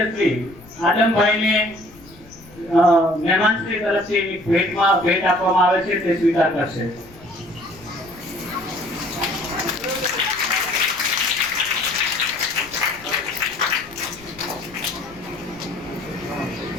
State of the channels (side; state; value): left; noise; rumble, 23 dB below the sound